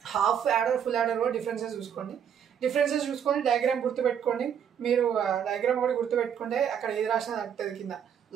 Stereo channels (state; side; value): quieter; left; 8.4 dB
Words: half adder full adder కూడా డిఫరెన్సెస్ చూసుకొని డయాగ్రామ్ గుర్తుపెట్టుకోండి. మీరు డయాగ్రామ్ కూడా గుర్తుపెట్టుకుంటే అక్కడ ఏది రాసినా తగ్గుతుంది కింద,